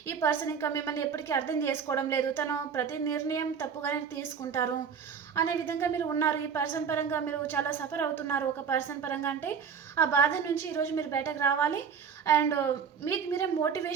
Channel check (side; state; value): left; quieter; 6.8 dB